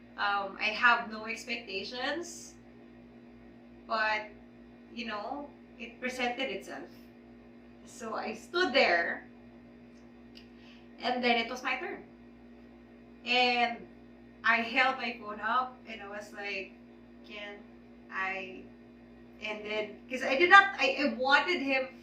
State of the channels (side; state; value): both; identical; correlation 1.00